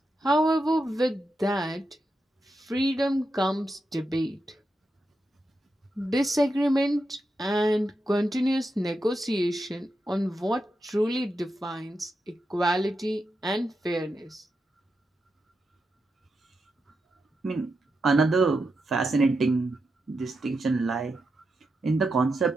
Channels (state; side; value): normal; both; correlation 0.87